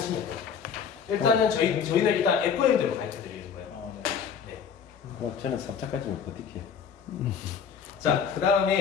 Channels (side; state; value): right; quieter; 7.0 dB